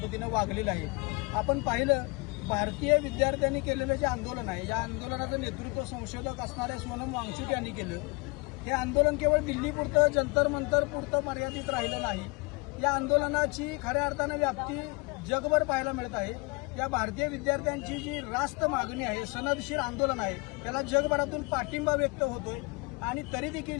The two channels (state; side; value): quieter; right; 28.6 dB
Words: वागलेलं आहे। आपण पाहिलं भारतीय विद्यार्थ्यांनी केलेलं जे आंदोलन आहे, या आंदोलनाचं नेतृत्व संशोधक असणाऱ्या सोनम वांगचुक यांनी केलं। हे आंदोलन केवळ दिल्लीपुरतं, जंतर मंतर पुरतं मर्यादित राहिलं नाही। या आंदोलनाची खऱ्या अर्थानं व्याप्ती जगभर पाहायला मिळत आहे। या भारतीय विद्यार्थ्यांची जी रास्त मागणी आहे, सनदशीर आंदोलन आहे, त्याला जगभरातून पाठिंबा व्यक्त होतोय आणि तरी देखील